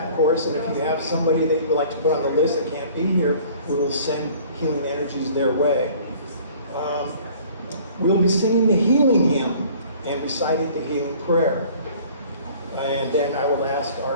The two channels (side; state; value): both; inverted; correlation -0.51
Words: of course, and if you have somebody that you would like to put on the list that can't be here, we will send healing energies their way. We'll be singing the healing hymn and reciting the healing prayer. And then I will ask